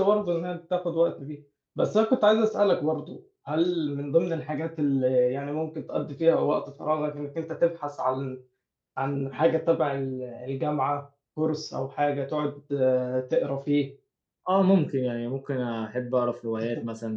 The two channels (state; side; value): identical; both; correlation 1.00